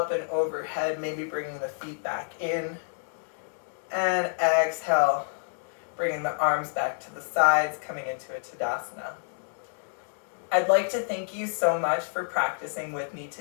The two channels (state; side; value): silent; right; digital silence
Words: and overhead, maybe bringing the feet back in. And exhale, bringing the arms back to the sides, coming into a Tadasana. I'd like to thank you so much for practicing with me